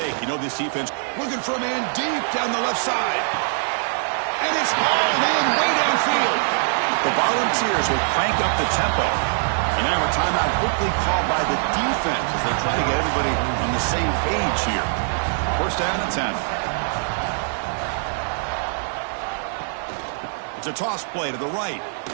You know this defense looking for a man deep down the left side. And it's hauled in way downfield. The Volunteers will crank up the tempo. And now a timeout quickly called by the defense as they try to get everybody on the same page here. First down and 10. It's a toss play to the right.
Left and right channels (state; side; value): silent; left; digital silence